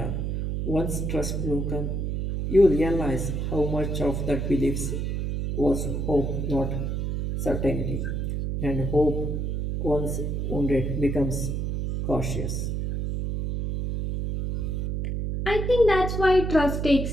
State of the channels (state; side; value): noise; right; hum, 1 dB below the sound